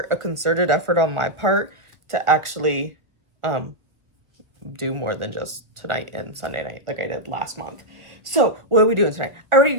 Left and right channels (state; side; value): late; left; 1.1 ms